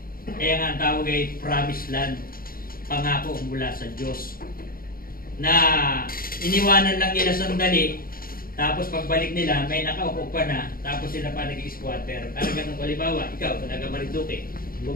Kaya nga ang tawag ay promised land, pangako mula sa Diyos. Na iniwanan lang nila sandali, tapos pagbalik nila, may nakaupo pa na, tapos sila pa nag-squatter. Talagang halimbawa, ikaw, taga Marinduque,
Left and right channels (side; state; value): right; late; 0.42 ms